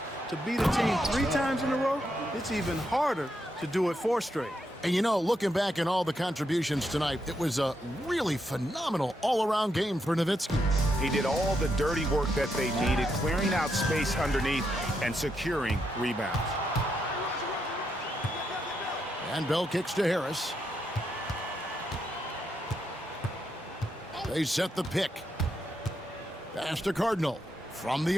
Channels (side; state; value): both; normal; correlation 0.81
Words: to beat a team 3 times in a row, it's even harder to do it 4 straight. And you know, looking back at all the contributions tonight, it was a really phenomenal all-around game for Nowitzki. He did all the dirty work that they needed, clearing out space underneath and securing rebounds. And Bell kicks to Harris. They set the pick. Pass to Cardinal. From the